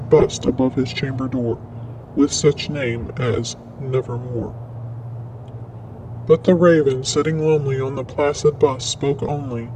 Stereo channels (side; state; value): both; identical; correlation 1.00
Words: bust above his chamber door, with such name as Nevermore. But the raven, sitting lonely on the placid bust, spoke only